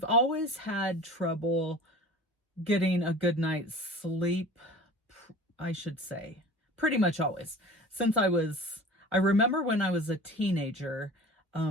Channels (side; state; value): both; normal; correlation 0.40